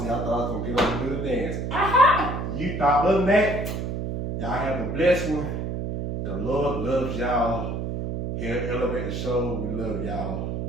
I thought I was gonna get up and do the dance. Aha! You thought, other than that, y'all have a blessed one. The Lord loves y'all. Here at Elevate the Show, we love y'all.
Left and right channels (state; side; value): noise; right; hum, 3 dB below the sound